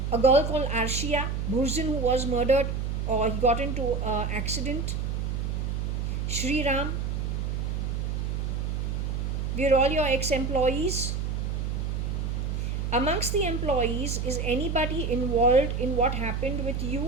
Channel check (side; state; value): right; noise; hum, 1 dB below the sound